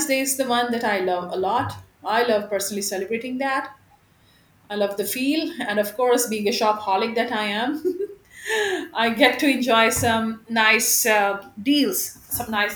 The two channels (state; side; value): identical; both; correlation 1.00